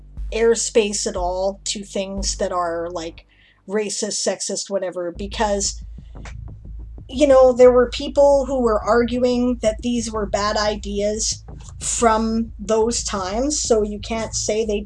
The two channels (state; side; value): identical; both; correlation 1.00